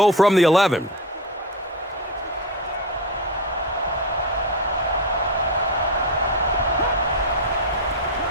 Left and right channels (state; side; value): normal; both; correlation 0.16